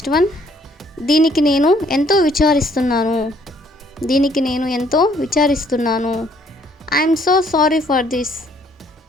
వన్, దీనికి నేను ఎంతో విచారిస్తున్నాను. దీనికి నేను ఎంతో విచారిస్తున్నాను. I'm so sorry for this.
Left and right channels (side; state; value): both; normal; correlation 0.64